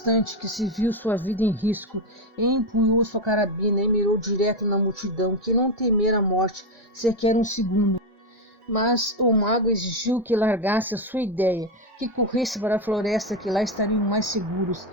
que se viu sua vida em risco, e empunhou sua carabina e mirou direto na multidão, que não temera a morte sequer um segundo. Mas o mago exigiu que largasse a sua ideia, que corresse para a floresta, que lá estariam mais seguros,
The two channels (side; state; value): both; normal; correlation 0.09